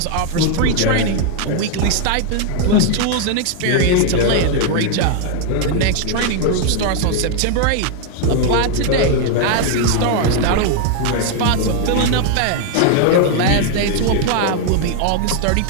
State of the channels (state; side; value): different; both; correlation 0.00